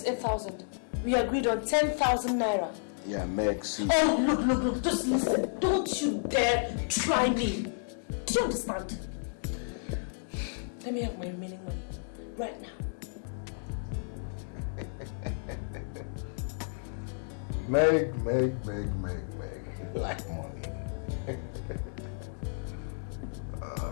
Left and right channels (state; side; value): silent; right; digital silence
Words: 8,000. We agreed on 10,000 naira. Yeah, Meg, see. Oh, look, just listen. Don't you dare try me. Do you understand? Let me have my remaining money right now. Meg. Like money.